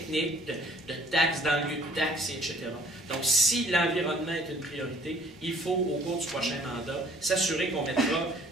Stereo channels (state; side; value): normal; both; correlation 0.58